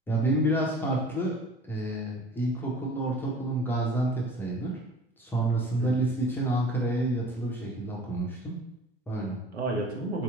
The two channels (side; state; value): both; normal; correlation 0.45